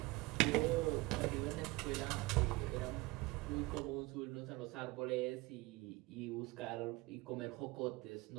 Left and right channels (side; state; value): left; quieter; 22.3 dB